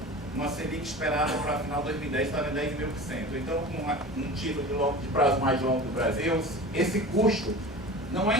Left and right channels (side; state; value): both; normal; correlation 0.36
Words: Selic esperada para final de 2010, estava em 10,5%. Então, com um título de prazo mais longo do Brasil, esse custo não é